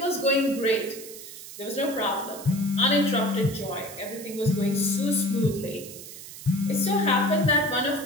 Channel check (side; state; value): right; noise; hiss, 14 dB below the sound